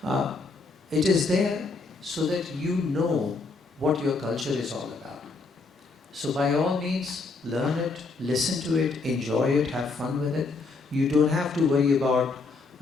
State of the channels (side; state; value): right; quieter; 3.9 dB